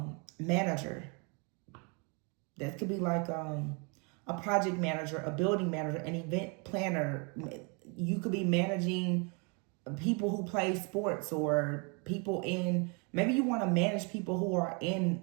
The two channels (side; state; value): left; quieter; 33.7 dB